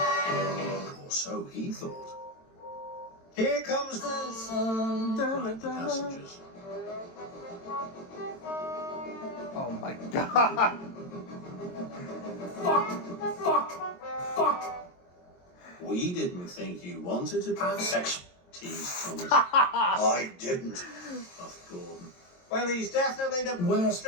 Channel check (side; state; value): right; late; 22 ms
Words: Or so he thought. Here comes the sun, cried the passengers. Oh my god! Fuck! We didn't think you wanted to have sex, teased Thomas. I didn't, puffed Gordon. Well, he's definitely the Where's-